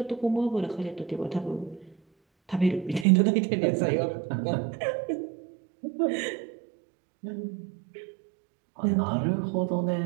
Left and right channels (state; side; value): drops out; left; at 3.1 s